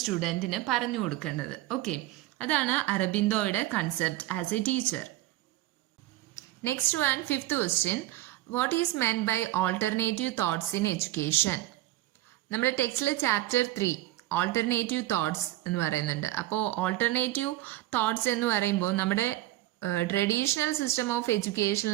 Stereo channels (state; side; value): quieter; left; 16.1 dB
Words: പറഞ്ഞു കൊടുക്കേണ്ടത്. ഓക്കെ, അതാണ് അരബിന്ദോയുടെ concept as a teacher. Next one, fifth question. What is meant by alternative thoughts in education? നമ്മുടെ ടെക്സ്റ്റിൽ ചാപ്റ്റർ 3 ഓൾട്ടർനേറ്റീവ് തോട്ട്സ് എന്ന് പറയുന്നുണ്ട്. അപ്പോൾ ഓൾട്ടർനേറ്റീവ് തോട്ട്സ് എന്ന് പറയുമ്പോൾ നമ്മുടെ ട്രഡീഷണൽ സിസ്റ്റം ഓഫ്